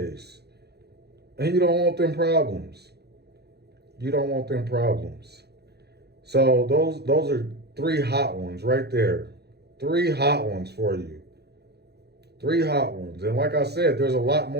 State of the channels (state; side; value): late; left; 0.48 ms